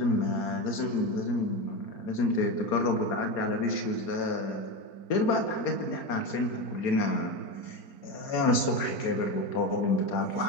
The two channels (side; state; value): right; late; 4.4 ms